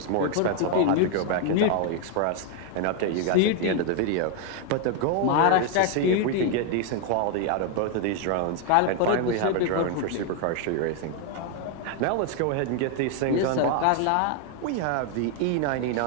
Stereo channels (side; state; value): both; different; correlation 0.01